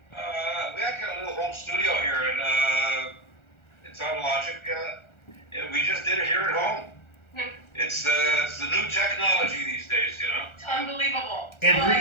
We actually got a little home studio here, and it's on Logic. And we just did it here at home. It's the new technology these days, you know. It's unbelievable. Well,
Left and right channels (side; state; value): right; late; 1.4 ms